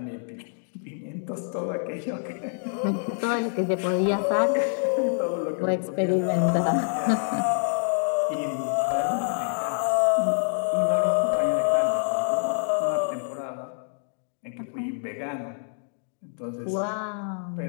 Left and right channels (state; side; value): silent; right; digital silence